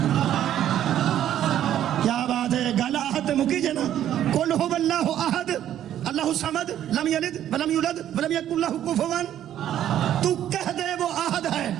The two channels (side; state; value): left; quieter; 11.2 dB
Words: کیا بات ہے گل احد مکی جے نا قل هو اللہ احد اللہ الصمد لم یلد ولم یولد ولم یکن لہ کفوا تو کہہ دے وہ احد ہے